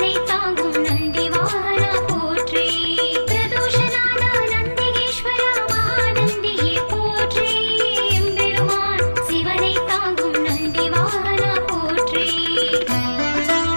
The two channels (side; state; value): both; inverted; correlation -1.00